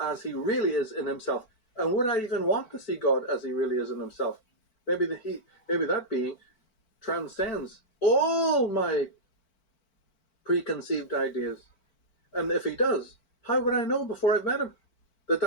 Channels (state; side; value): late; right; 4.5 ms